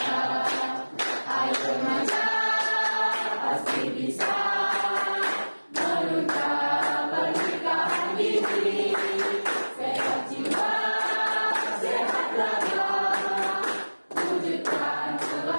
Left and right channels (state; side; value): inverted; both; correlation -1.00